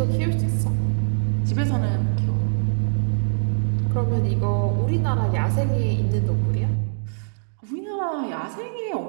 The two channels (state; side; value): silent; left; digital silence